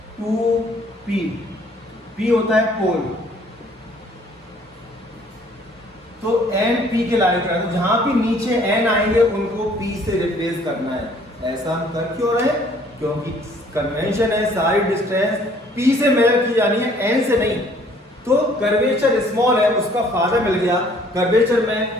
to P। P होता है पोल, तो N P के लाइन पर, जहां भी नीचे N आएंगे उनको P से रिप्लेस करना है। ऐसा हम कर क्यों रहे, क्योंकि कन्वेंशन है सारी डिस्टेंस P से मेजर की जानी है, N से नहीं। तो कर्वेचर स्मॉल है, उसका फायदा मिल गया, कर्वेचर में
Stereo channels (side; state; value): both; normal; correlation 0.59